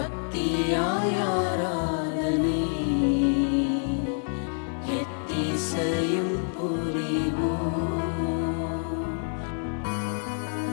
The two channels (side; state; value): right; silent; 60 dB below the other